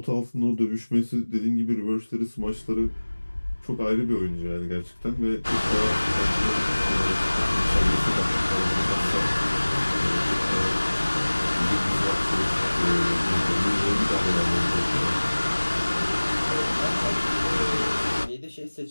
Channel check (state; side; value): inverted; both; correlation -1.00